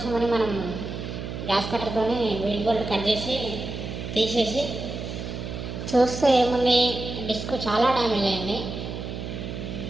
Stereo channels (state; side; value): noise; right; hum, 7 dB below the sound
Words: మనం గ్యాస్ కట్టర్తో వీల్ బోల్ట్ కట్ చేసి తీసేసి చూస్తే ఏముంది, డిస్క్ చాలా డ్యామేజ్ అయింది.